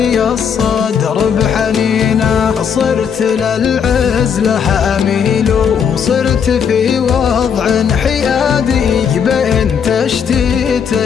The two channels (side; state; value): right; quieter; 7.2 dB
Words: الصدر بحنينه. صرت للعزلة أميل وصرت في وضع حيادي بين تشتيت